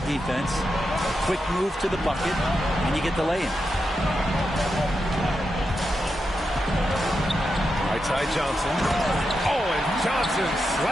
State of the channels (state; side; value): normal; both; correlation 0.87